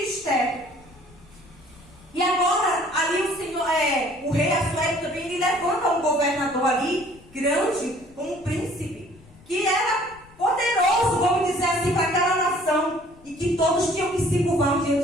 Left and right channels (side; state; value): left; noise; rumble, 25 dB below the sound